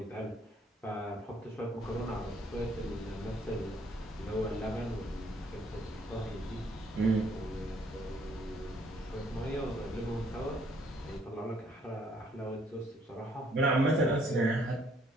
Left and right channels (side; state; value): both; normal; correlation 0.65